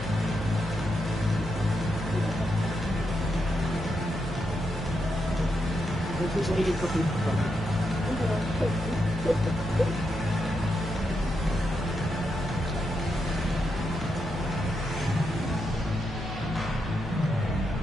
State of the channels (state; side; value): normal; both; correlation 0.83